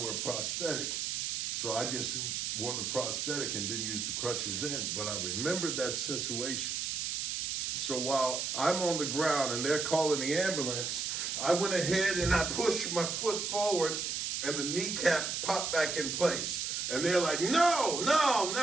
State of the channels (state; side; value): noise; right; hiss, 1 dB below the sound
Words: a prosthetic. So I just wore the prosthetic and didn't use the crutches then. But I remembered that situation. So while I'm on the ground and they're calling the ambulance, I went ahead and I pushed my foot forward and the kneecap popped back in place. And they're like, no, no,